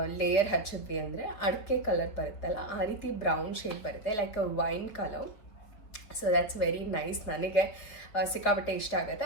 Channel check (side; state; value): right; late; 4.7 ms